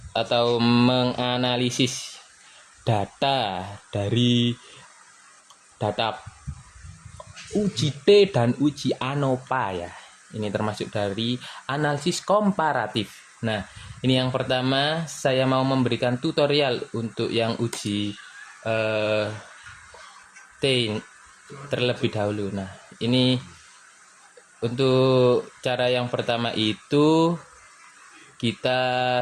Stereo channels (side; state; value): both; identical; correlation 1.00